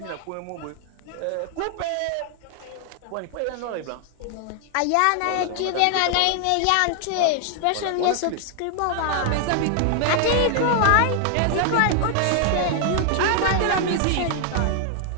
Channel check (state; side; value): different; both; correlation 0.00